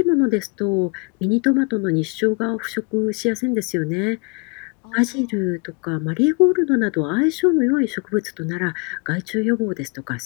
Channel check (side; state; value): right; quieter; 32.7 dB